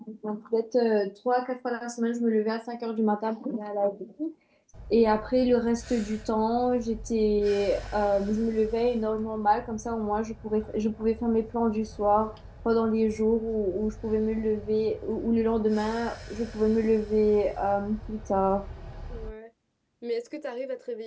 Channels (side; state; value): both; identical; correlation 1.00